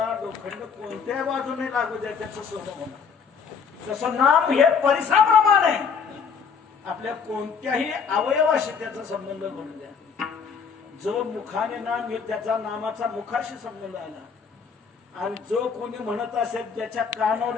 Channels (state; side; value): quieter; right; 6.1 dB